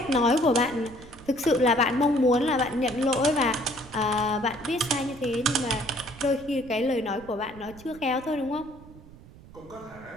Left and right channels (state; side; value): noise; right; rumble, 20 dB below the sound